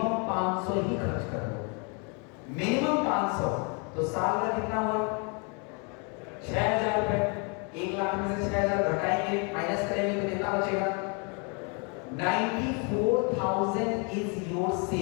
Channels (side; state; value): right; quieter; 34.8 dB